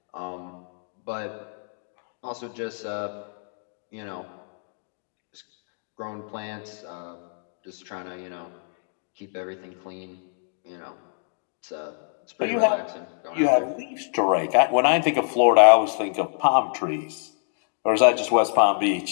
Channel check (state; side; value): silent; right; digital silence